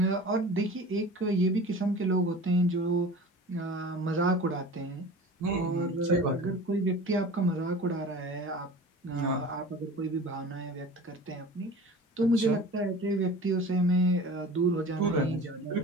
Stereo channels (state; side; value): normal; both; correlation 0.39